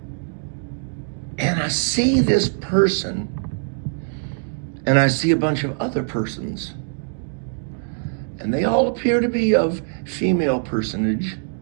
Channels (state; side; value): silent; left; digital silence